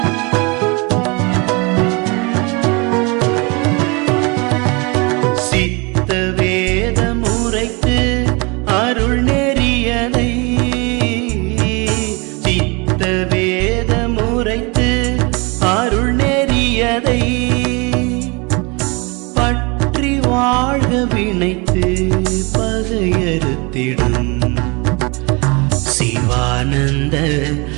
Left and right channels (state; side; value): quieter; left; 28.7 dB